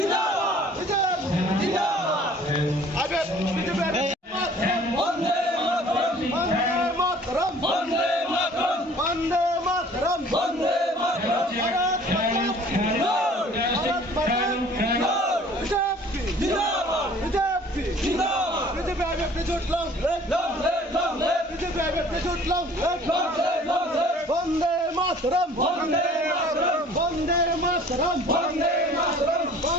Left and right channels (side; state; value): both; normal; correlation 0.51